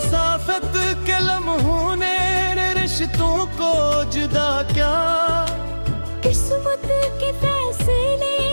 के लम्हों ने रिश्तों को जुदा क्या, किस्मत के फैसले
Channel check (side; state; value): both; inverted; correlation -1.00